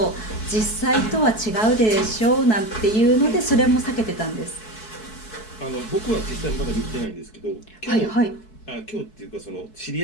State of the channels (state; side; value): late; right; 4.6 ms